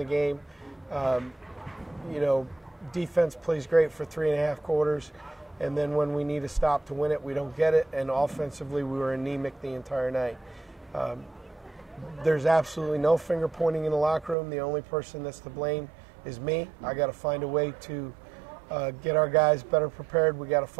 game. Defense plays great for 3.5 quarters, and then when we need a stop to win it, we don't get it. And offensively, we were anemic the entire night. There's absolutely no finger pointing in the locker room. The only person that's to blame is me. I got to find a way to get our guys better prepared. We got to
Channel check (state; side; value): drops out; left; at 14.4 s